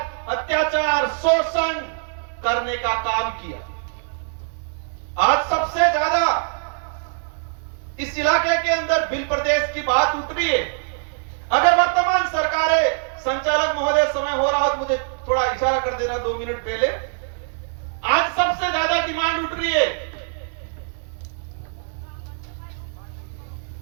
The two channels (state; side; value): silent; left; digital silence